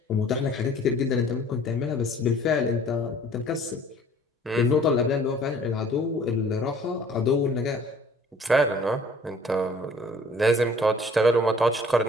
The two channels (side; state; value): both; normal; correlation 0.53